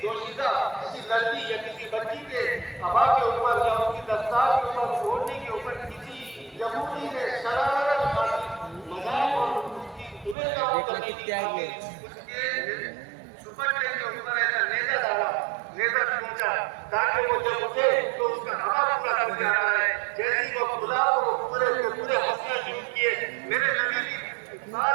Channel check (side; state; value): left; drops out; at 10.4 s